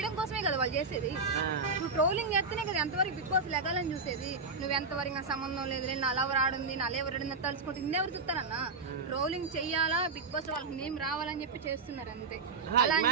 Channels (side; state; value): left; quieter; 4.1 dB